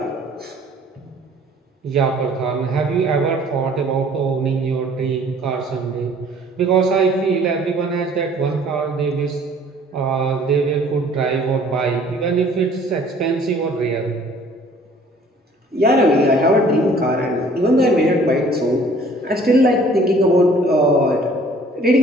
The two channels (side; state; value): both; normal; correlation 0.54